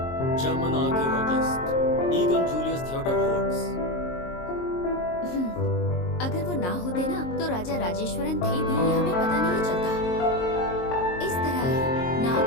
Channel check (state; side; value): late; right; 22 ms